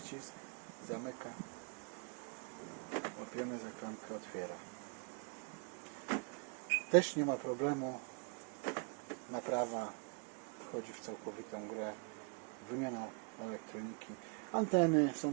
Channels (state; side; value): quieter; left; 36.9 dB